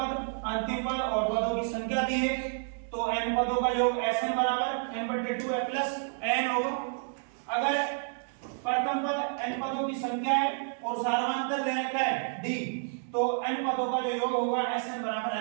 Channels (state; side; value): silent; left; 58 dB below the other